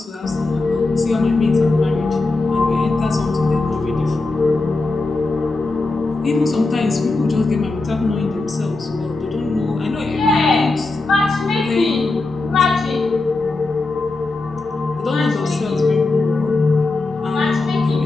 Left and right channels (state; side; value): quieter; right; 3.4 dB